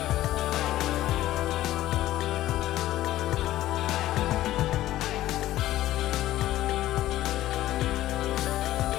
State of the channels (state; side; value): quieter; right; 14.6 dB